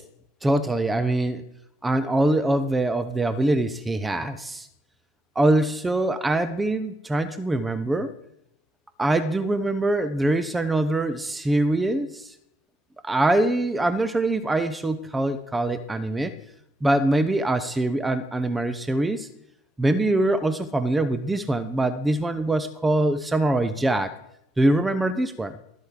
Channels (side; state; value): both; normal; correlation 0.86